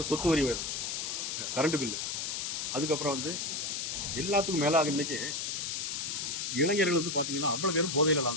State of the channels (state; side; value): noise; left; hiss, 2 dB below the sound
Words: சொத்து வரி உயர்வு, கரண்ட் பில்லு, அதுக்கப்புறம் எல்லாத்துக்கும் மேலாக இன்னைக்கு இளைஞர்கள் பார்த்தீங்கன்னா அவ்வளோ பேரும் போதையில்